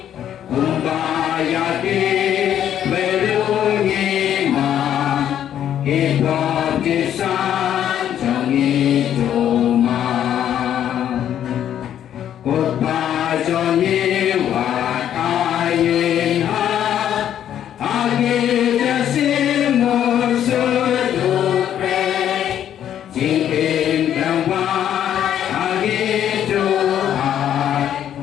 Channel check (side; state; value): right; quieter; 10.3 dB